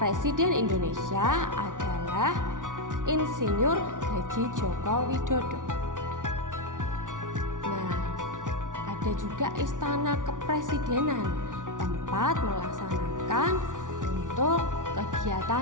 Indonesia adalah Insinyur Haji Joko Widodo. Nah, ada juga Istana Kepresidenan, tempat melaksanakan untuk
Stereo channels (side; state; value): left; late; 0.87 ms